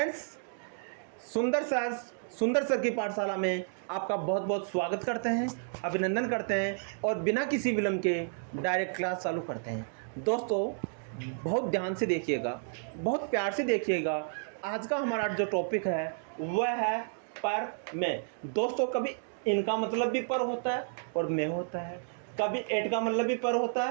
Sundar sir की पाठशाला में आपका बहुत बहुत स्वागत करते हैं, अभिनंदन करते हैं और बिना किसी विलंब के डायरेक्ट क्लास चालू करते हैं। दोस्तों, बहुत ध्यान से देखिएगा, बहुत प्यार से देखिएगा। आज का हमारा जो टॉपिक है वह है पर में। दोस्तों, कभी इनका मतलब भी पर होता है और में होता है, कभी एट का मतलब भी पर होता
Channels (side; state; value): left; silent; digital silence